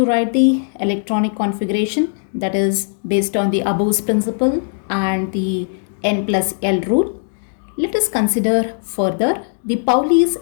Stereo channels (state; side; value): silent; right; digital silence